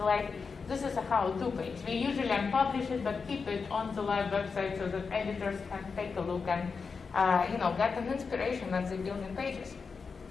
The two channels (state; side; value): quieter; right; 5.1 dB